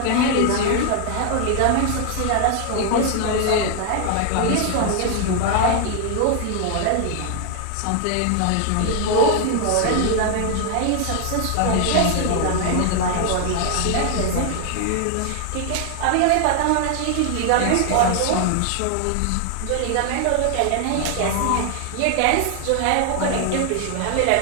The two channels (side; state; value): both; different; correlation 0.00